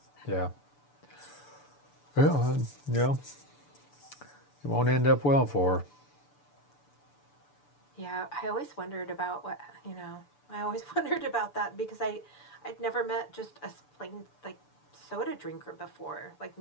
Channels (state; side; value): late; right; 6.9 ms